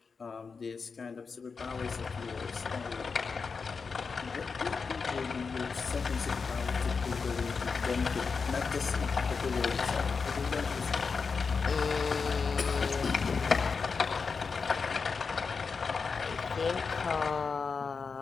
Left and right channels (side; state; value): right; quieter; 5.1 dB